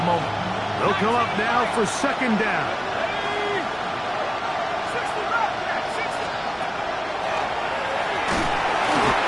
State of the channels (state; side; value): identical; both; correlation 1.00